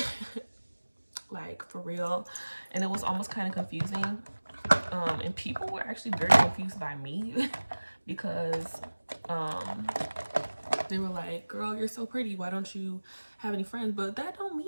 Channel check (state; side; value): inverted; both; correlation -1.00